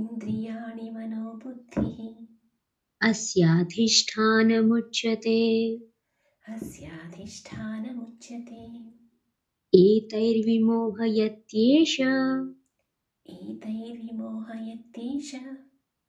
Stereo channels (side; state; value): both; identical; correlation 1.00